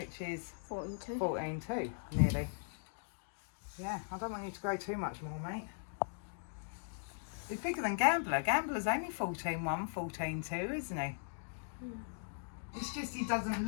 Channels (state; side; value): silent; right; digital silence